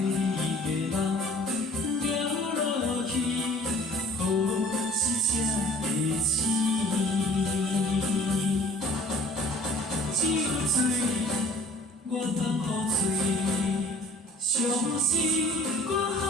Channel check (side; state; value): both; normal; correlation 0.50